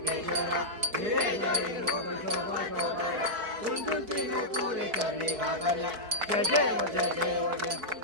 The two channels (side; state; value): left; late; 4.6 ms